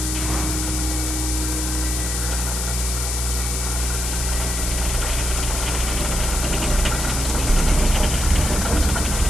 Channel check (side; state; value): left; noise; hiss, 2 dB below the sound